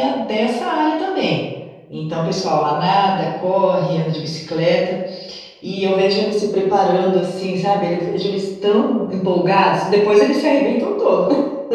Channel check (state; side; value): identical; both; correlation 1.00